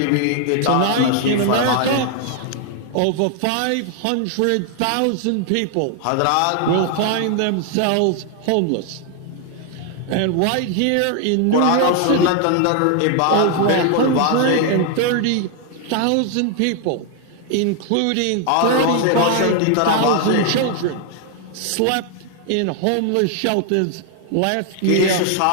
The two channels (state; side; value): different; both; correlation 0.00